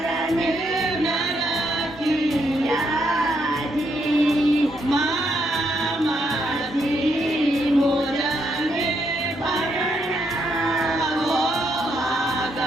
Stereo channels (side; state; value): both; normal; correlation 0.76